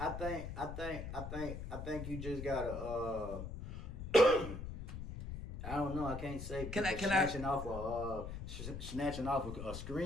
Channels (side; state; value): left; noise; rumble, 7 dB below the sound